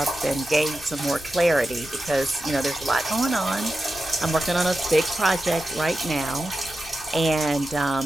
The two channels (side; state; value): both; normal; correlation 0.91